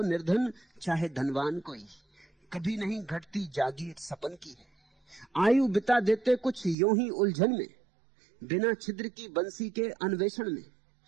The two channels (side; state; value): left; drops out; at 6.8 s